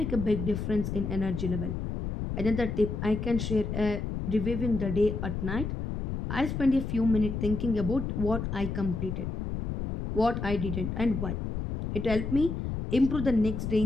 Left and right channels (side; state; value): left; noise; rumble, 4 dB below the sound